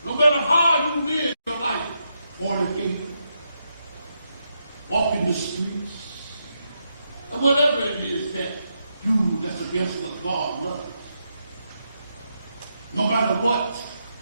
no matter how you live your life, fornicate, walk in the streets, or whatever it is that's against what God loves. No matter what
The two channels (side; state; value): both; inverted; correlation -0.82